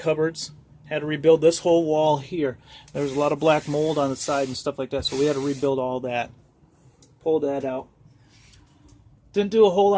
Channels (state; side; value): identical; both; correlation 1.00